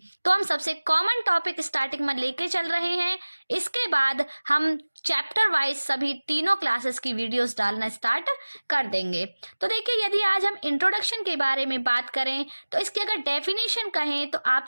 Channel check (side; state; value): both; inverted; correlation -1.00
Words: तो हम सबसे कॉमन टॉपिक स्टार्टिंग में लेके चल रहे हैं। इसके बाद हम चैप्टर वाइज सभी तीनों क्लासेस की वीडियोस डालना स्टार्ट कर देंगे। तो देखिए, यदि आज हम इंट्रोडक्शन के बारे में बात करें तो इसकी अगर डेफिनेशन कहें तो